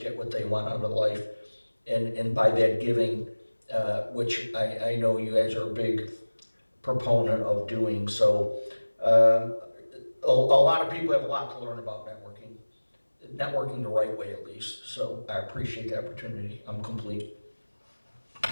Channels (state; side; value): inverted; both; correlation -1.00